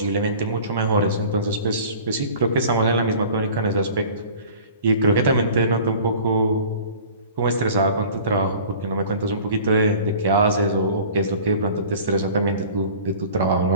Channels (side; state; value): both; inverted; correlation -0.45